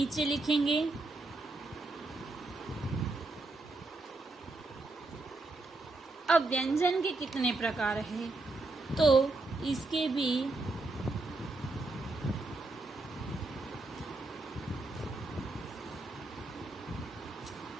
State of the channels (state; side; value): quieter; left; 3.0 dB